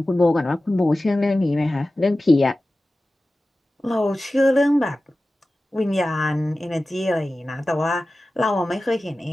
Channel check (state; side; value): normal; both; correlation 0.96